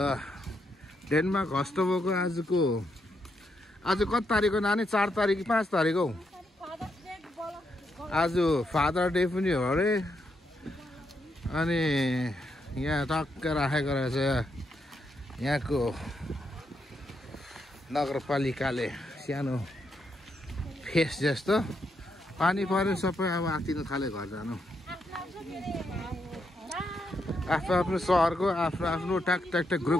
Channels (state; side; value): normal; both; correlation 0.80